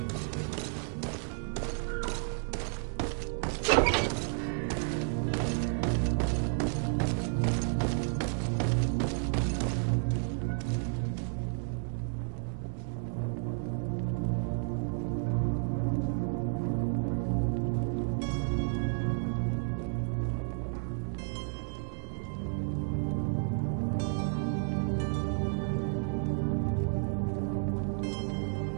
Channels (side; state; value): left; silent; 56 dB below the other